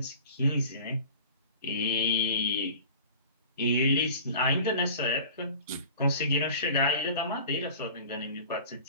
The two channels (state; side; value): inverted; both; correlation -0.42